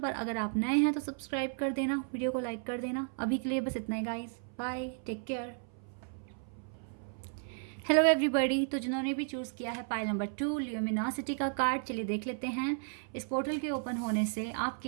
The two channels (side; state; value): left; silent; 55 dB below the other